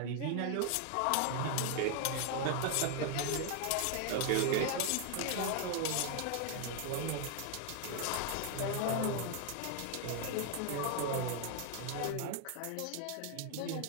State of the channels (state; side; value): different; both; correlation 0.00